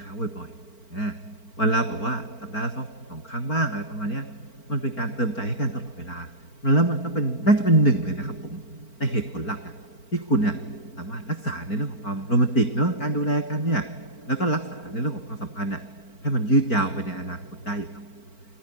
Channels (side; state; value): right; late; 4.4 ms